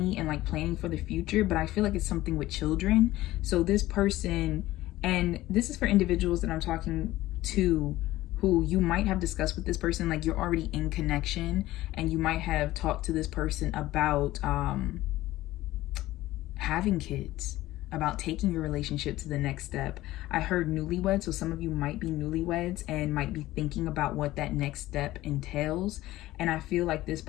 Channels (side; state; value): right; quieter; 16.5 dB